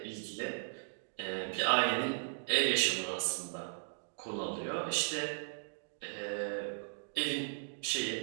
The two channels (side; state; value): left; silent; digital silence